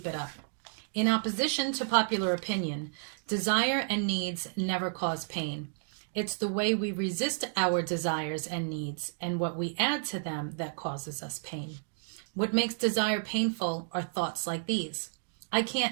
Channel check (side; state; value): left; silent; digital silence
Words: it up. In opposition to popular opinion, desire and needs never cause pain. It's the way we resist our desires and needs and what we add to them that causes us pain. What makes desire painful are thoughts like these. I